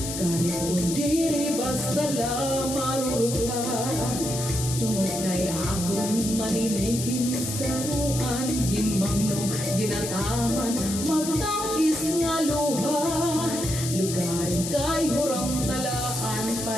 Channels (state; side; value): noise; left; hiss, 6 dB below the sound